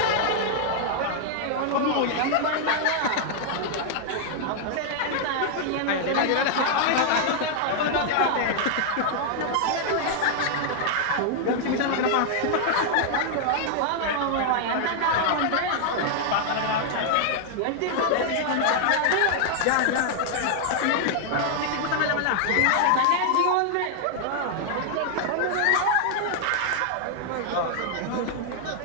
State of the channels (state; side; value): different; both; correlation 0.00